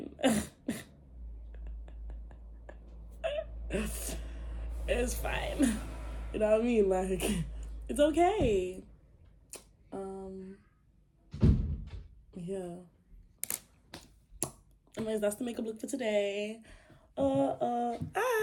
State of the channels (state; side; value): identical; both; correlation 1.00